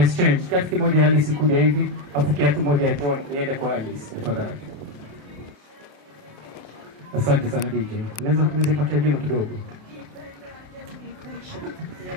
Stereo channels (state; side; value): late; left; 28 ms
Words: Kiatu kimoja ya Alice kuja hivi, afu kiatu moja ya John iende kwa Alice. Tafadhali. Asante sana DJ. Unaweza patia jino kidogo.